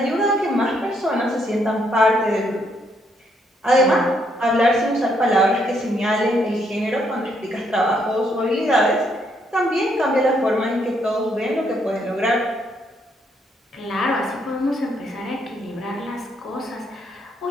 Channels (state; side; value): normal; both; correlation 0.73